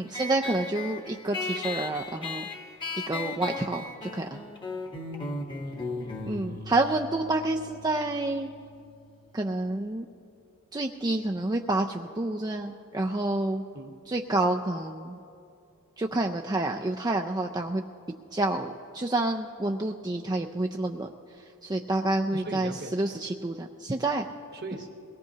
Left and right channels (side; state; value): both; normal; correlation 0.62